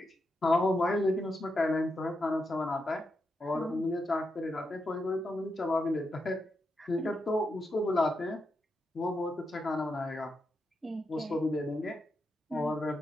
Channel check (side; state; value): both; normal; correlation 0.85